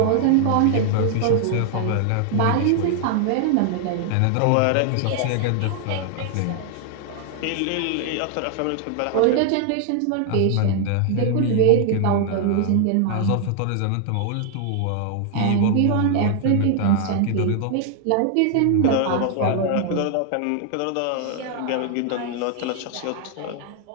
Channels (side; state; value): both; different; correlation 0.00